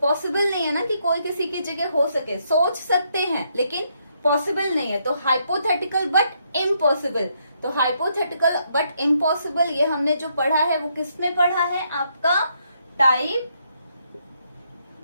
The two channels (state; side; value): inverted; both; correlation -0.75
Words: नहीं है ना कि कोई किसी की जगह हो सके। सोच सकते हैं लेकिन पॉसिबल नहीं है, तो हाइपोथेटिकल बट इम्पॉसिबल। तो हाइपोथेटिकल बट इम्पॉसिबल ये हमने जो पढ़ा है वो किस में पढ़ा है, आपका टाइप